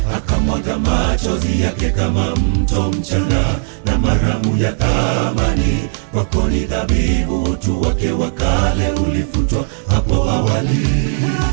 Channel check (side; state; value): left; silent; 60 dB below the other